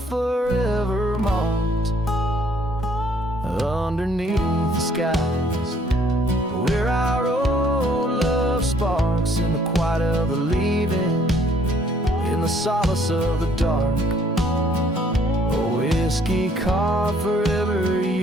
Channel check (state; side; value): normal; both; correlation 0.63